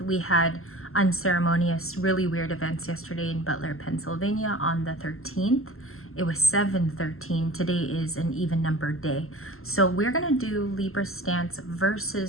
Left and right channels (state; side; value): late; right; 0.62 ms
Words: We had unceremonious, really weird events yesterday in Butler, Pennsylvania on the 13th. It was 7/13. Today is an even numbered day. So we're going to do Libra stance